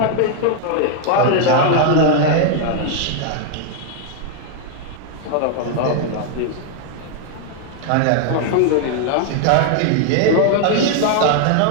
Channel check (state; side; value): different; both; correlation 0.00